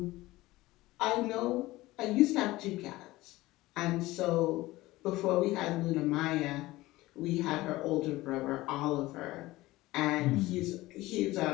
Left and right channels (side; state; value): right; quieter; 18.6 dB